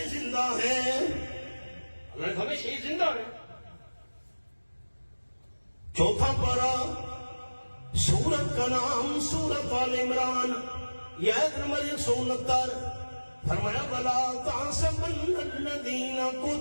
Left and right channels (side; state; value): both; inverted; correlation -1.00